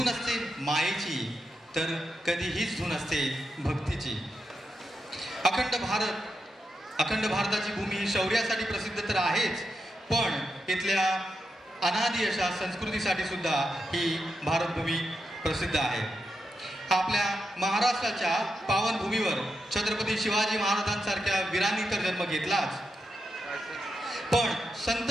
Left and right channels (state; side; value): normal; both; correlation 0.86